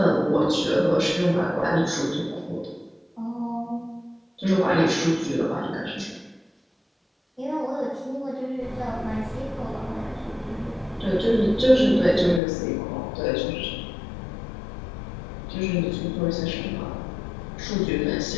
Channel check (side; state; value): right; drops out; at 12.4 s